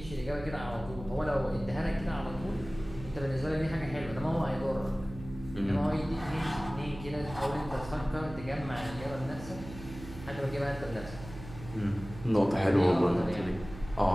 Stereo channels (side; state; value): right; noise; hum, 13 dB below the sound